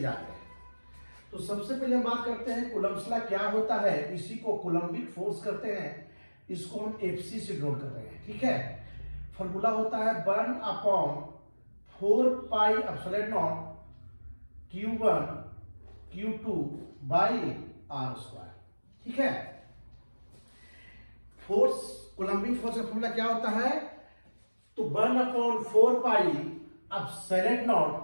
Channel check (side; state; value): both; inverted; correlation -1.00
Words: हैं। तो सबसे पहले हम बात करते हैं कूलम्ब्स लॉ क्या होता है। इसी को कूलम्बिक फोर्स करते हैं, इसको हम एफसी से डिनोट कर रहे हैं, ठीक है। फॉर्मूला होता है 1/4 pi epsilon not Q1 Q2 by R square, ठीक है। फोर्स, कूलम्बिक फोर्स का फॉर्मूला क्या होता है? तो 1/4 pi epsilon not